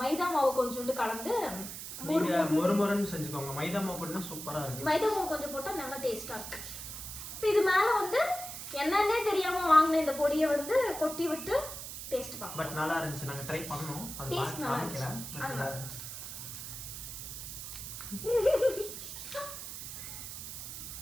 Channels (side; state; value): right; noise; hiss, 9 dB below the sound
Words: மைதா மாவு கொஞ்சோண்டு கலந்து மொறுமொறுன்னு செஞ்சுக்கோங்க. மைதா மாவு போட்டா சூப்பராக இருக்கு. மைதா மாவு கொஞ்சம் போட்டால் நல்லா டேஸ்ட்டாக இருக்கு. இப்போ இது மேலே வந்து என்னன்னே தெரியாமல் வாங்கின இந்த பொடியை வந்து கொட்டி விட்டு டேஸ்ட் பார்க்கலாம். பட் நல்லா இருந்துச்சு. நாங்கள் ட்ரை பண்ணோம். அது டேஸ்ட் நல்லா இருந்துச்சு. நல்லா இருந்துச்சு.